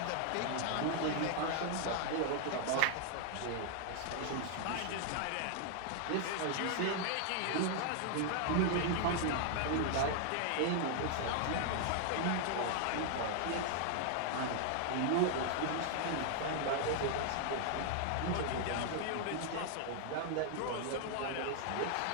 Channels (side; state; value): both; different; correlation 0.00